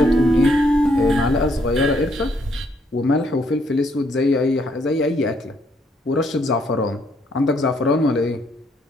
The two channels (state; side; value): normal; both; correlation 0.71